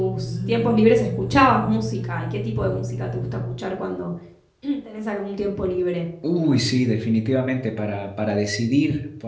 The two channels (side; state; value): both; identical; correlation 1.00